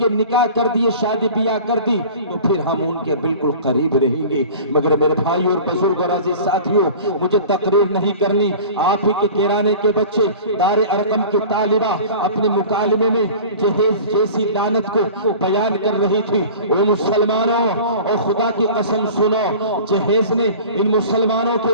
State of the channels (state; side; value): inverted; both; correlation -0.40